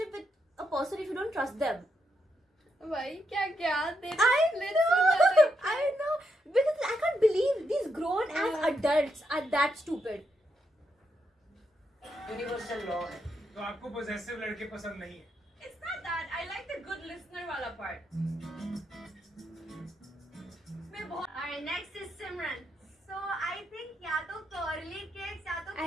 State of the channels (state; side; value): normal; both; correlation 0.81